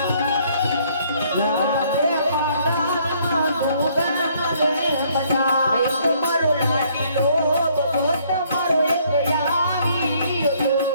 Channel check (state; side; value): inverted; both; correlation -0.65